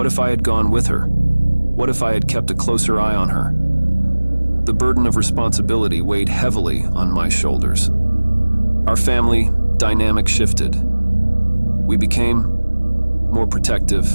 if I had gone with her? What if I had kept a closer eye on her? The burden of responsibility weighed heavily on my shoulders. Our family dynamic shifted. We became more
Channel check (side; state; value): both; inverted; correlation -1.00